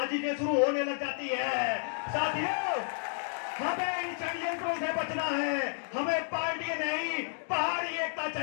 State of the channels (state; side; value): silent; right; digital silence